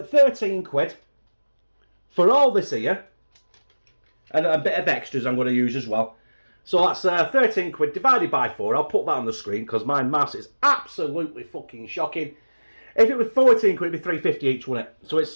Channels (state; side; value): inverted; both; correlation -1.00